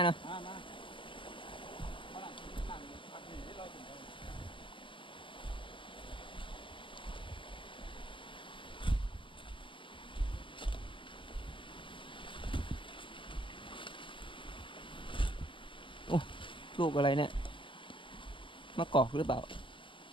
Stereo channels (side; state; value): right; late; 0.25 ms